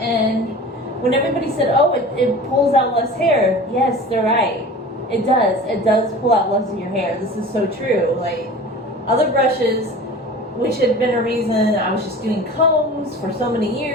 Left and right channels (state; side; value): normal; both; correlation 0.38